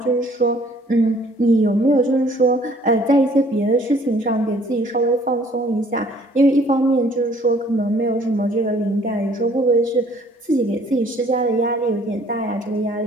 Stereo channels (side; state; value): both; normal; correlation 0.58